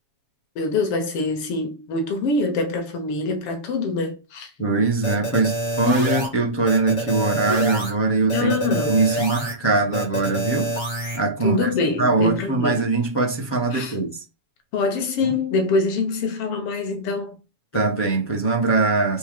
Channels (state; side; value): late; right; 7.2 ms